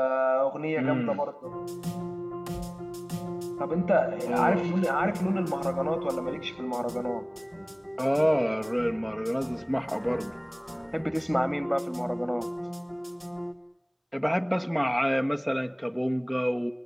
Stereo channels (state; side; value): identical; both; correlation 1.00